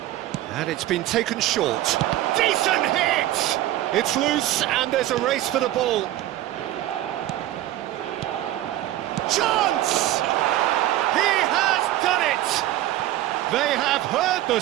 And it's been taken short. Decent hit! It's loose, and there's a race for the ball. Chance! He has done it! They have heard the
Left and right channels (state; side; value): quieter; left; 14.4 dB